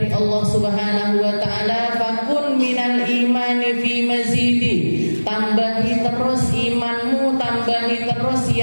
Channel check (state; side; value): inverted; both; correlation -1.00